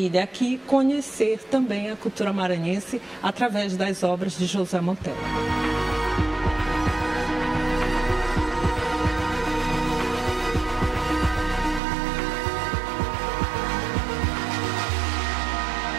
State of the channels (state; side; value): drops out; left; at 11.8 s